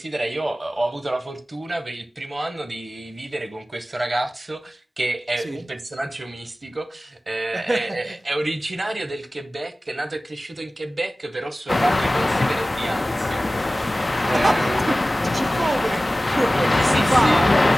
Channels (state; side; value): normal; both; correlation 0.97